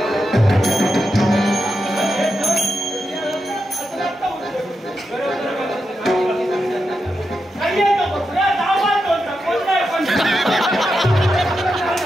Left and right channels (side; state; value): both; normal; correlation 0.87